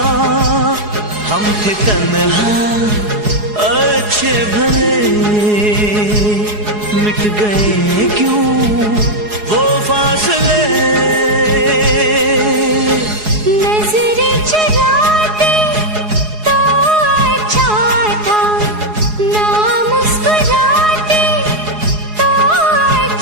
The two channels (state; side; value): late; left; 4.8 ms